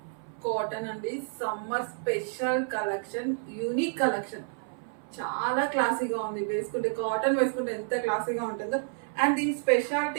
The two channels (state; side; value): silent; left; 57 dB below the other